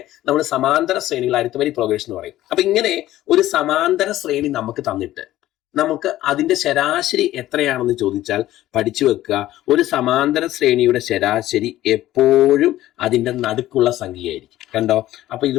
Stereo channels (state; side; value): quieter; right; 14.6 dB